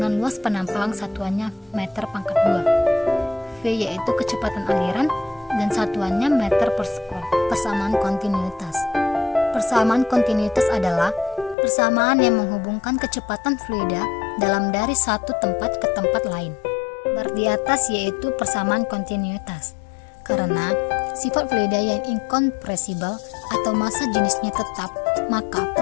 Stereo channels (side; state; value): right; drops out; at 11.6 s